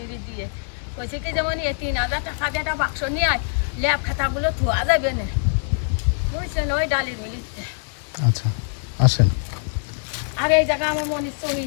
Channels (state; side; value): silent; right; 63 dB below the other